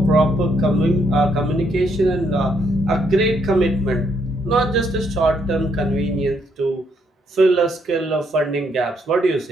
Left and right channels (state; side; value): normal; both; correlation 0.73